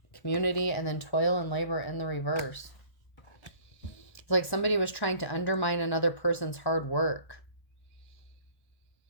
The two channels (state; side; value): late; right; 1.2 ms